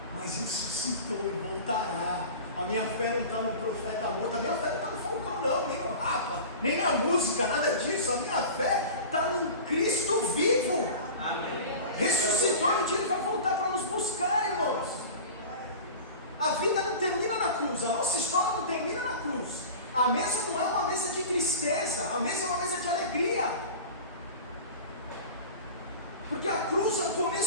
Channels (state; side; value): inverted; both; correlation -0.35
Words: mas ressuscitou e voltará. A minha fé não está no profeta morto, a minha fé não está no Falcão não, nem no Rapa, nem na música, nada disso. A minha fé está no Cristo vivo. Amém. Ressuscitou e um dia Ele vai voltar para nos buscar, irmãos. A vida não termina na cruz, a nossa história não termina na cruz. A mesa não é uma mesa de tristeza, a mesa é uma mesa de alegria. Porque a cruz é o